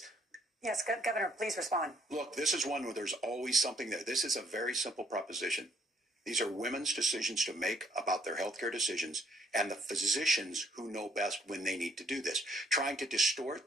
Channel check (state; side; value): normal; both; correlation 0.68